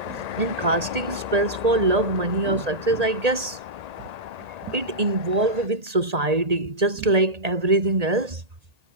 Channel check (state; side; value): late; left; 1.8 ms